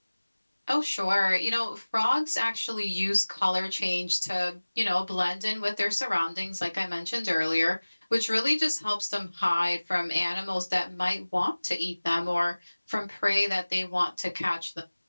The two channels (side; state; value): both; inverted; correlation -1.00